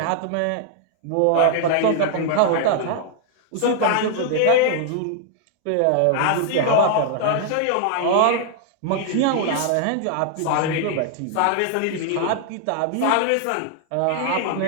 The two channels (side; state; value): both; different; correlation -0.01